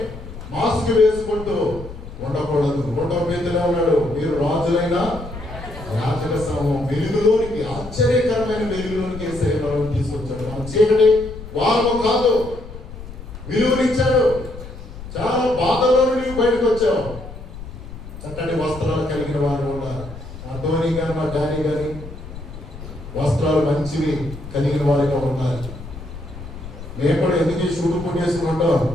మాస్క్ వేసుకుంటూ ఉండకూడదు. 1వ పేతురులో ఉన్నాడు, మీరు రాజులైన యాజక సమూహం వెలుగులోనికి, ఆశ్చర్యకరమైన వెలుగులోనికి యేసయ్య తీసుకొచ్చాడు. మన చీకటి వారు కాదు, విలువనిచ్చాడు. చాలా బాధలో నుండి బయటకు వచ్చావు. చక్కటి వస్త్రాలు కలిగిన వారు ఉన్నారు. మా ధోని గాని మా డానీ గాని వస్త్రాలు మంచివి కలిగిన వారిగా ఉన్నారు. మేము కూడా ఎందుకు ఈ షూటు పుట్టి చేసుకుంటాం?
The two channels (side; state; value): left; noise; rumble, 12 dB below the sound